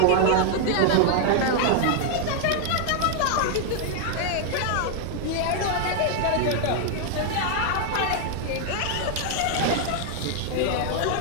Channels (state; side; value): different; both; correlation 0.00